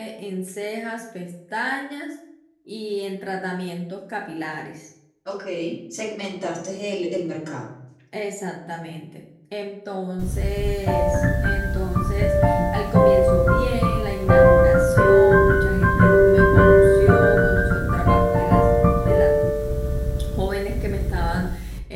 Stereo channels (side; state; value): both; identical; correlation 1.00